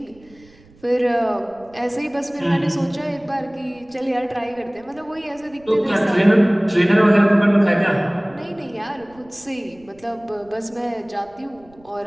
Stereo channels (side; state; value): right; noise; rumble, 27 dB below the sound